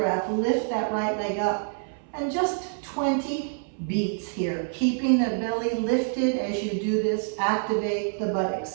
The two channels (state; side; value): silent; left; 60 dB below the other